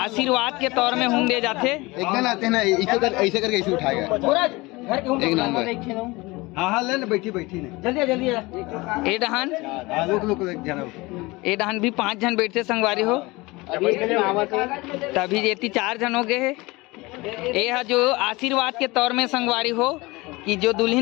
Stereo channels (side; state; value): right; quieter; 22.7 dB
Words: के तौर में हुम दे जाते एकदम आते ना ऐसे करके ऐसे उठाएगा एक नंबर हाँ ले ले बैठी बैठी ने जल्दी जल्दी ए डहान भी 5 जन बैठते संगवारी हो तभी जेती 4 जन हो गए है ये जो आशीर्वाद के तौर में संगवारी हो कि जो